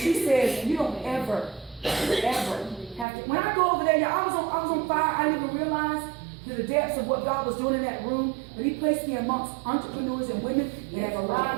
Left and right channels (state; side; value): drops out; left; at 3.1 s